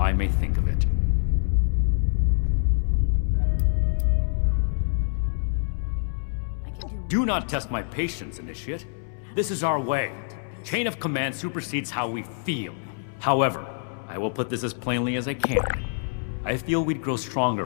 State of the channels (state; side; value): silent; right; 61 dB below the other